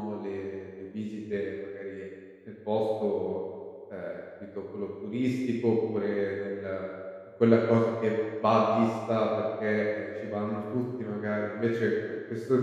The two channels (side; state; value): both; identical; correlation 1.00